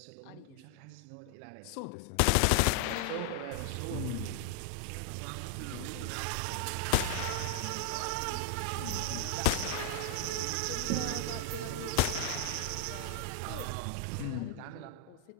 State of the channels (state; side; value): different; both; correlation 0.00